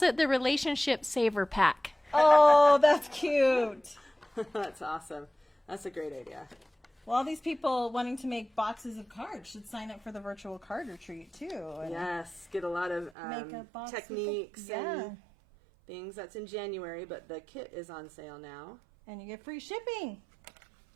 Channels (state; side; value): drops out; left; at 13.1 s